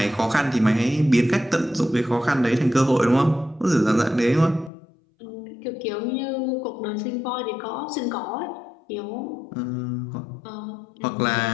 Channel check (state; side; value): drops out; right; at 4.7 s